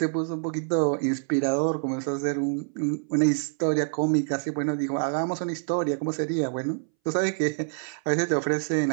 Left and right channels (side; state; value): left; silent; 61 dB below the other